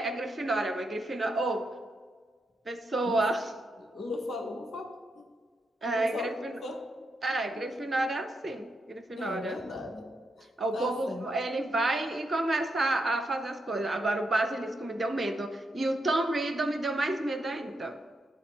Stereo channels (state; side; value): normal; both; correlation 0.82